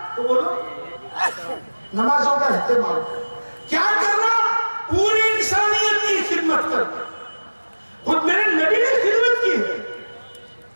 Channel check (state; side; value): inverted; both; correlation -1.00